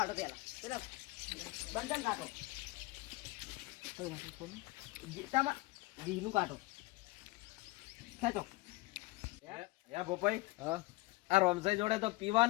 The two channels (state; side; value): quieter; right; 21.7 dB